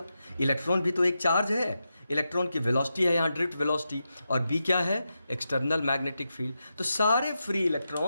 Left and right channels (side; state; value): both; inverted; correlation -0.88